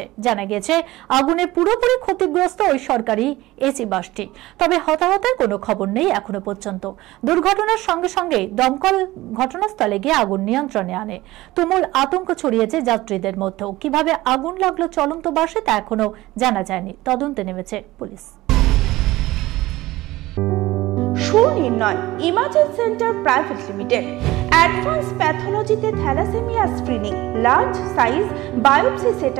জানা গেছে আগুনে পুরোপুরি ক্ষতিগ্রস্ত ওই সরকারি এসি বাসটি। তবে হতাহতের কোনো খবর নেই এখনো পর্যন্ত। দুর্ঘটনার সঙ্গে সঙ্গে দমকল ঘটনাস্থলে গিয়ে আগুন নিয়ন্ত্রণে আনে। তুমুল আতঙ্ক ছড়িয়েছে যাত্রীদের মধ্যেও। কিভাবে আগুন লাগলো চলন্ত বাসে তা এখনো জানা যায়নি। তদন্তে নেমেছে পুলিশ। Sunirnoy imaging centre private limited advance প্যাথোলজিতে thalassaemia screening, large size biopsy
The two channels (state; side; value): quieter; left; 18.0 dB